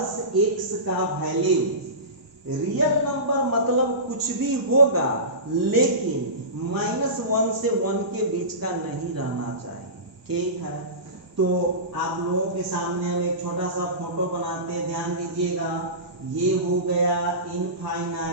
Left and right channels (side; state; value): left; late; 1.0 ms